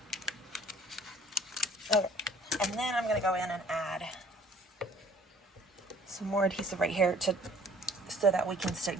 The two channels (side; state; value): both; normal; correlation 0.54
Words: Okay, and then I'm going to go in and add some more adhesive right here so that we can